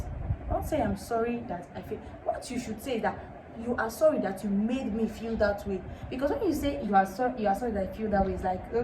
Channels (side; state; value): both; identical; correlation 1.00